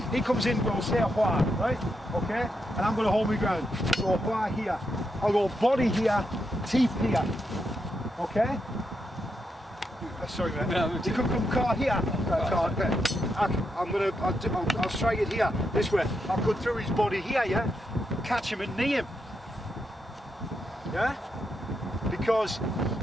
He comes in, we'll say a hua, right? Okay? And I'm going to hold my ground. So a hua here. I'll go body here, teeth here. Okay? Sorry mate. No, you could come car here. Okay. I'll strike it here, this way. I'll go through his body here, yeah? Catch him and knee him. Yeah? Because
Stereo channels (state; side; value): normal; both; correlation 0.83